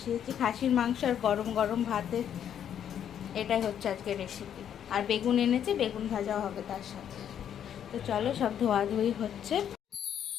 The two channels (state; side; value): quieter; right; 9.3 dB